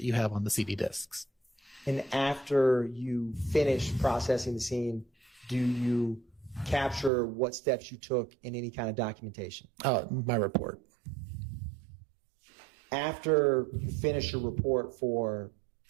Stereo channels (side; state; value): left; drops out; at 7.1 s